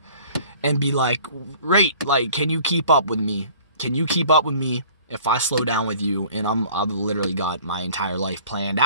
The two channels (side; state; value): both; inverted; correlation -0.49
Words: and be like, great, like, can you keep up with me? Can you keep up with me if I slow down with you? And I've literally got my entire life planned